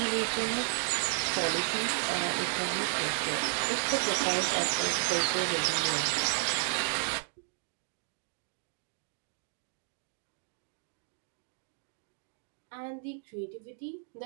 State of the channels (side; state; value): left; silent; digital silence